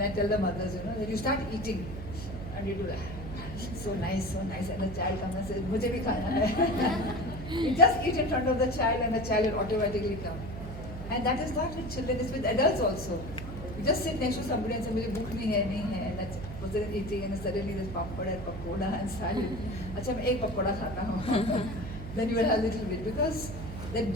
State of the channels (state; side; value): noise; right; hum, 9 dB below the sound